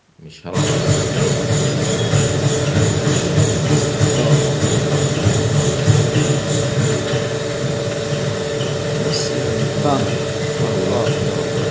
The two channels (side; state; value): both; identical; correlation 1.00